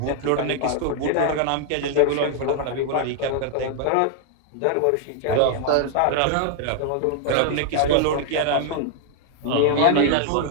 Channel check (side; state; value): both; different; correlation 0.00